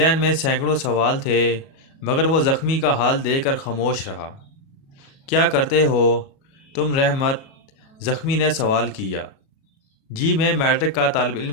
میں سینکڑوں سوال تھے، مگر وہ زخمی کا حال دیکھ کر خاموش رہا۔ کیا کرتے ہو تم رحمت؟ زخمی نے سوال کیا۔ جی، میں میٹرک کا طالب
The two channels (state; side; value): late; right; 37 ms